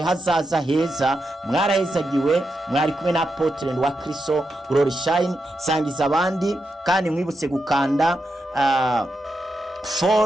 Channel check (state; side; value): normal; both; correlation 0.86